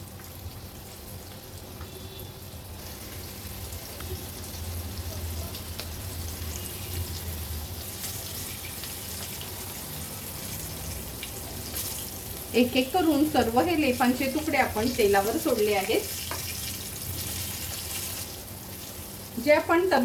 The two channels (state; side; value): identical; both; correlation 1.00